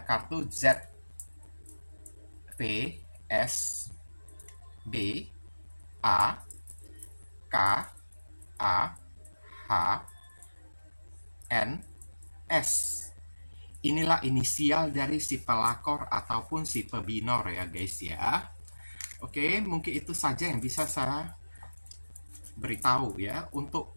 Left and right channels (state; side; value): inverted; both; correlation -1.00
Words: kartu Z, V, S, B, A, K, A, H, N, S. Inilah inisial dari si pelakor ataupun si pebinor ya guys ya. Oke, mungkin itu saja yang bisa saya beritahu ya